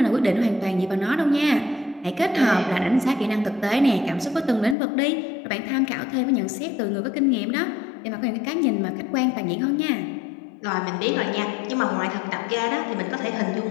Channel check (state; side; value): drops out; right; at 4.8 s